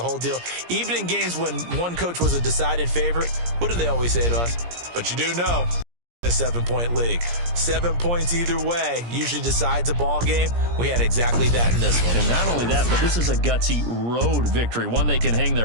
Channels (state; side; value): late; left; 17 ms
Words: whole deal? Even in games when one coach was a decided favorite, what do they always say to us? But you do know, a 7-point league. 7 points either way usually decides a ball game. We had exactly that in this one. And not only that, but this is a gutsy road victory, one they can hang